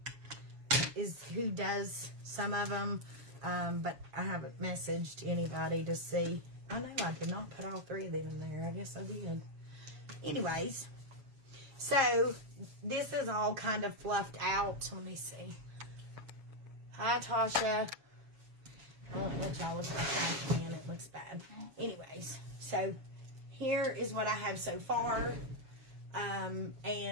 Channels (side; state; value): left; late; 7.3 ms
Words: is who does some of them, but I haven't messaged anybody to see I know I did not put all 3 of them in there. I guess I did. Anyways, so this is all kind of fluffed out. Let me see. Hi, Tasha. I won't let y'all look at the trash can. It looks bad. Anyways, so here is what I have so far.